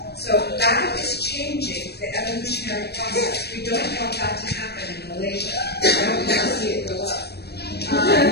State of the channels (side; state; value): right; late; 0.47 ms